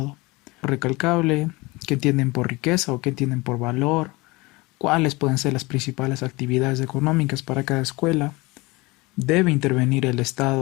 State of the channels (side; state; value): right; quieter; 23.4 dB